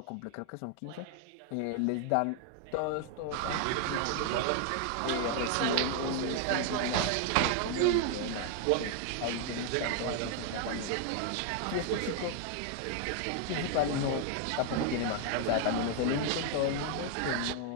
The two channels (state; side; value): different; both; correlation 0.00